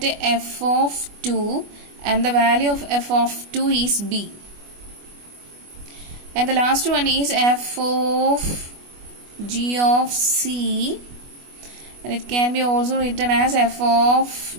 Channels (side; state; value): left; late; 25 ms